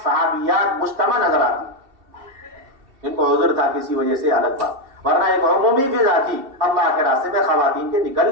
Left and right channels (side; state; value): left; late; 2.7 ms